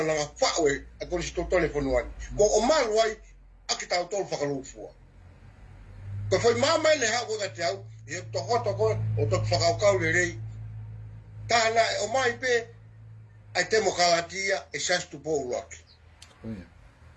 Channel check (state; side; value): identical; both; correlation 1.00